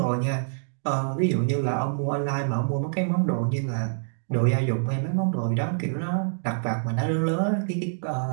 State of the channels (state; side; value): silent; left; digital silence